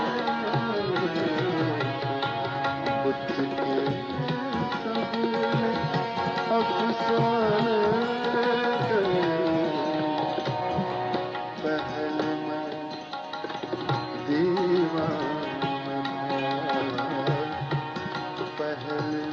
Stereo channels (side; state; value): both; identical; correlation 1.00